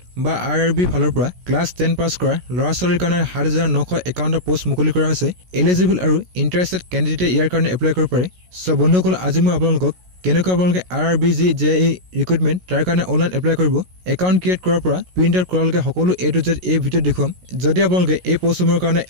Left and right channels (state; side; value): late; left; 16 ms